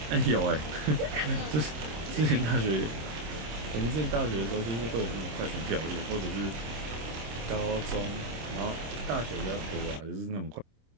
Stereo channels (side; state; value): left; late; 26 ms